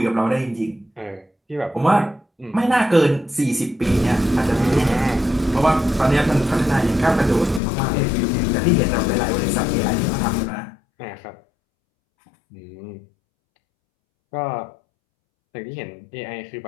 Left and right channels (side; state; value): right; drops out; at 7.6 s